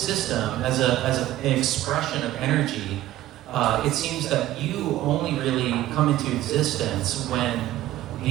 as an expression of energy, it seems that you only really come into existence when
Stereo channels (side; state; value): left; quieter; 14.6 dB